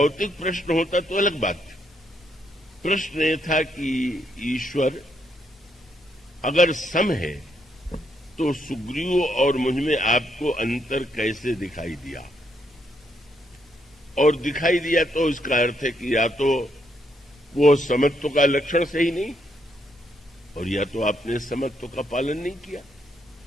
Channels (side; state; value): both; normal; correlation 0.75